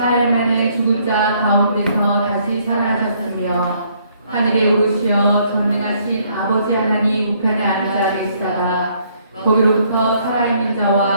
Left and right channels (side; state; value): both; inverted; correlation -0.67